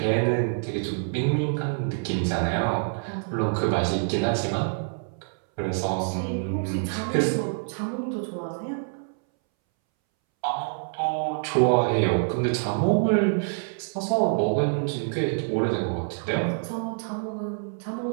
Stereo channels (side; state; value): left; silent; 61 dB below the other